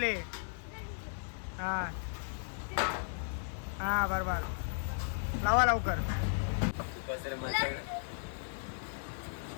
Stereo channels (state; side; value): silent; right; digital silence